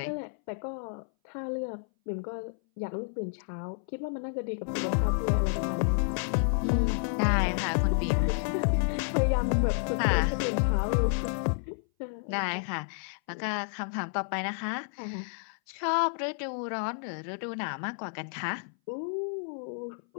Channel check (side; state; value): right; silent; 58 dB below the other